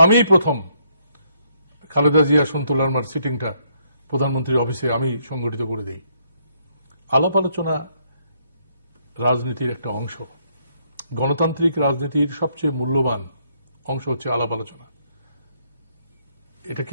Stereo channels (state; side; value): inverted; both; correlation -0.72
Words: আমি প্রথম খালেদা জিয়া সন্তু লারমার সিটিংটা প্রধানমন্ত্রীর অফিসে আমি সংগঠিত করে দিই। আলাপ আলোচনা রাজনীতির একটা অংশ। গণতান্ত্রিক রাজনীতির সবচেয়ে মূল্যবান অংশ হচ্ছে আলাপ আলোচনা। এটা